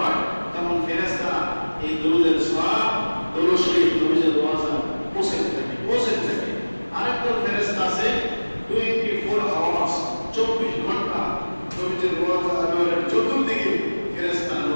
তখন ফেরেশতা এই দরুদের সওয়াব দরুদ শরীফ নবীজির রওজা পৌঁছে থাকে। আরেকদল ফেরেশতা আছে 24 আওয়ার্স 24 ঘন্টা নবীজির রওজা আনোয়ারের চতুর্দিকে ফেরেশতা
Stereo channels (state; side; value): inverted; both; correlation -1.00